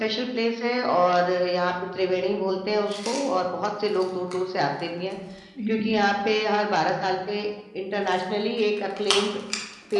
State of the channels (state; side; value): identical; both; correlation 1.00